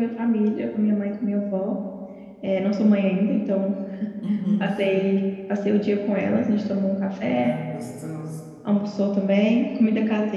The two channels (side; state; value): both; identical; correlation 1.00